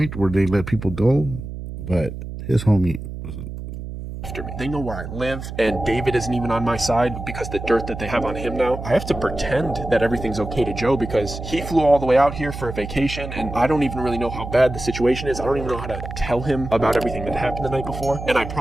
where they let people go, but his homie was after me. They know where I live, and David isn't even on my side because the dirt that they have on him now. I have to pretend that everything's okay to Joe because he flew all the way out here for a vacation, and I don't even really know how bad the situation is. I don't even know how to tell him about everything that happened the night before. And I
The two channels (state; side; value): noise; right; hum, 9 dB below the sound